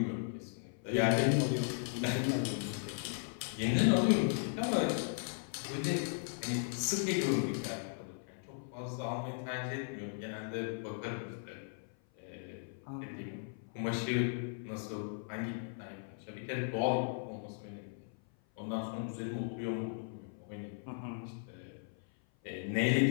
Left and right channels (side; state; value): right; silent; 53 dB below the other